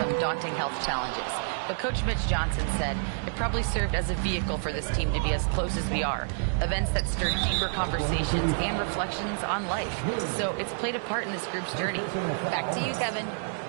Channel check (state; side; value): silent; left; digital silence